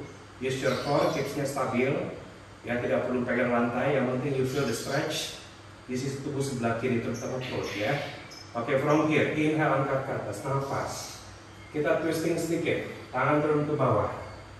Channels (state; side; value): identical; both; correlation 1.00